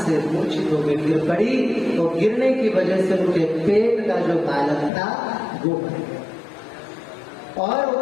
से मूर्छित होकर गिर पड़ी, और गिरने की वजह से उनके पेट का जो बालक था वो मर गया। और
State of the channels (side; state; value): right; drops out; at 4.9 s